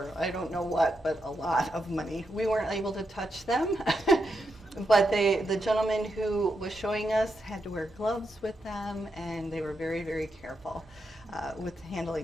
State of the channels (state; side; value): normal; both; correlation 0.84